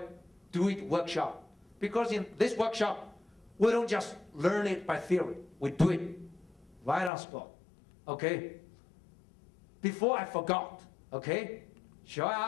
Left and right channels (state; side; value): drops out; right; at 7.1 s